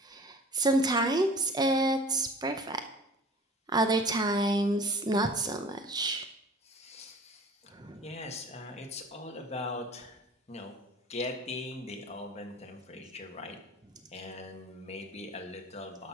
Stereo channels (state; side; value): normal; both; correlation 0.45